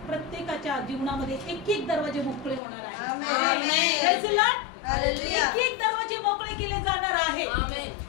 प्रत्येकाच्या जीवनामध्ये एक एक दरवाजे मोकळे होणार आहे. एक एक दरवाजे मोकळे केले जाणार आहे.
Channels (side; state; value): right; drops out; at 2.6 s